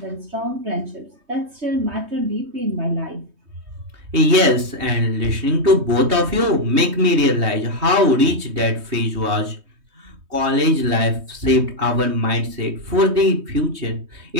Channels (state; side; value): late; left; 3.2 ms